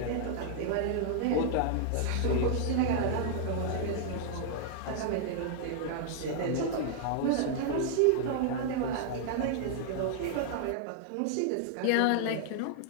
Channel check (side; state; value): both; different; correlation -0.01